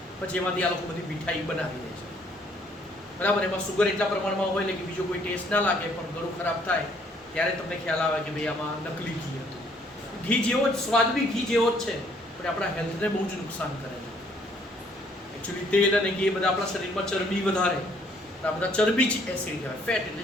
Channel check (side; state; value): both; normal; correlation 0.64